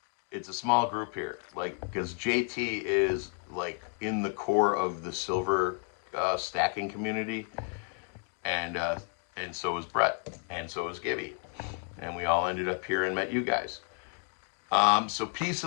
It's a small group here, like because JT is like in the core of the silver stacking community, and so was Brett, and so was Gibby, and we all ended up here and met you guys. So peace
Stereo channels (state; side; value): quieter; right; 38.8 dB